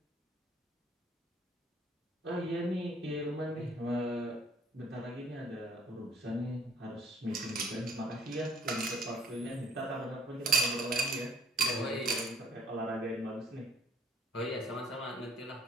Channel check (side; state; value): both; normal; correlation 0.59